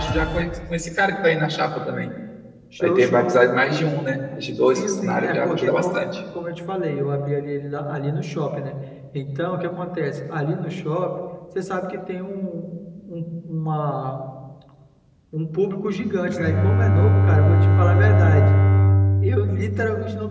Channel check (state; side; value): identical; both; correlation 1.00